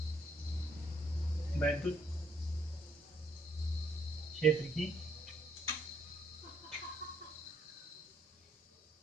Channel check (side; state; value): both; normal; correlation 0.70